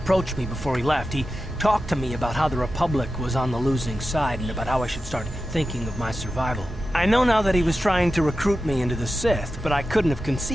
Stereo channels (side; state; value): both; normal; correlation 0.92